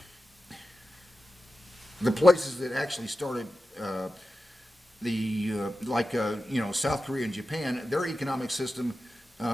places that actually started South Korea and Japan, their economic system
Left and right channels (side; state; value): both; normal; correlation 0.93